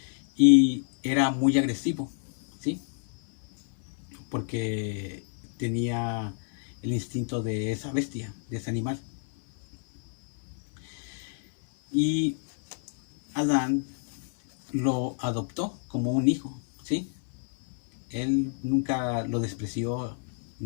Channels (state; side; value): silent; right; 59 dB below the other